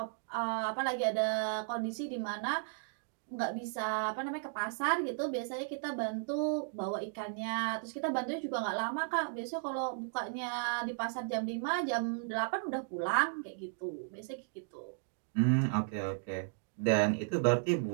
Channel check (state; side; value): silent; left; digital silence